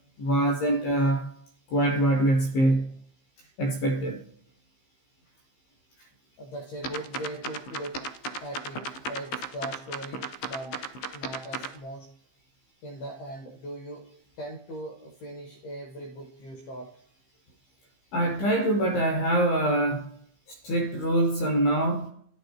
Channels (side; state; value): right; late; 15 ms